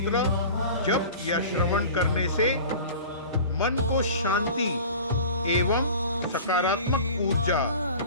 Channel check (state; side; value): inverted; both; correlation -0.39